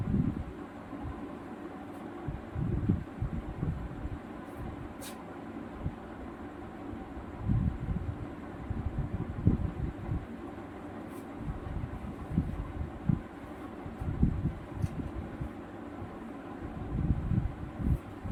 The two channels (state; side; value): identical; both; correlation 1.00